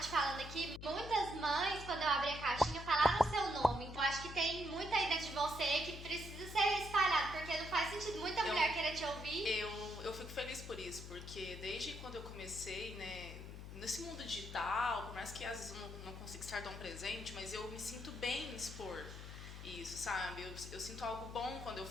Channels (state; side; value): noise; left; hum, 10 dB below the sound